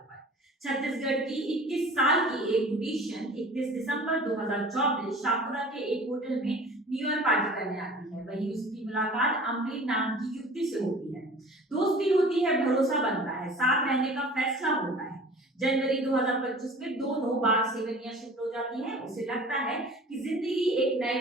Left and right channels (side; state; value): both; normal; correlation 0.43